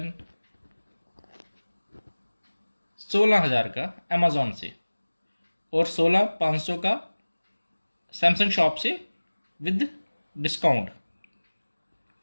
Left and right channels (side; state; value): both; inverted; correlation -1.00